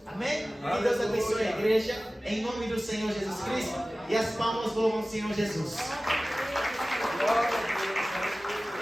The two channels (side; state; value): both; normal; correlation 0.97